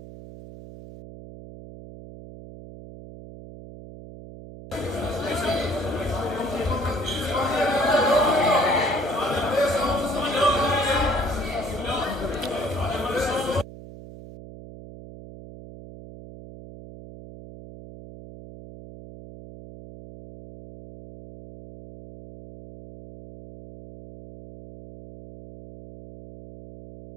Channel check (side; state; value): right; noise; hum, 15 dB below the sound